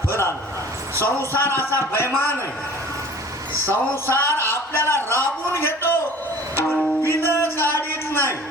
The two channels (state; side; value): normal; both; correlation 0.45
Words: फळ आलं. संसार असा बैमान आहे. संसार आपल्याला राबून घेतो पण बिल काढीत नाही.